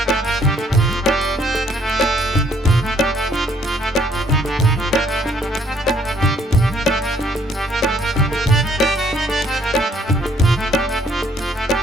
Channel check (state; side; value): normal; both; correlation 0.65